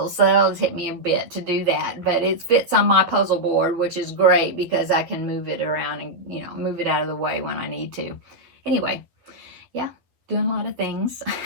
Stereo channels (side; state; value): left; late; 11 ms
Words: so that'll take me a bit to do that. But it fits on my puzzle board, which is great because I can move it around and, move it out of the way when I need to. Anyway, yeah, doing a lot of things.